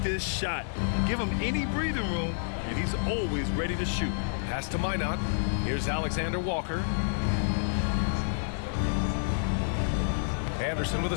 shot. Give him any breathing room, and he's always ready to shoot. Pass to Minot. Here's Alexander Walker. Anderson with a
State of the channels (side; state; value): right; silent; digital silence